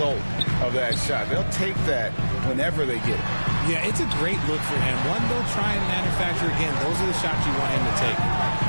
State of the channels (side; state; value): both; inverted; correlation -1.00